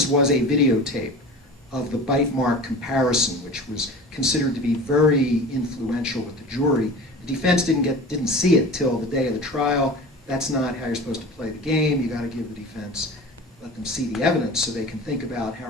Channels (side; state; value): both; normal; correlation 0.36